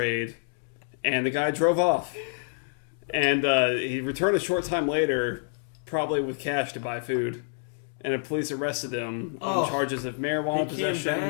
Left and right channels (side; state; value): right; silent; digital silence